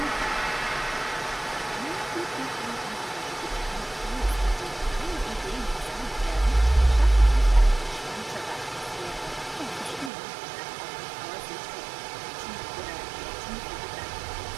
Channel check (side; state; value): left; drops out; at 10.1 s